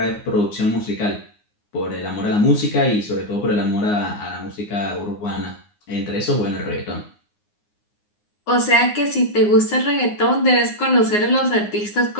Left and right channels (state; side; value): late; right; 9.6 ms